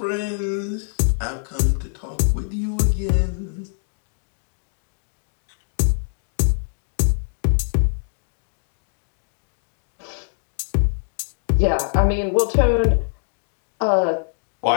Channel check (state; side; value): silent; right; 63 dB below the other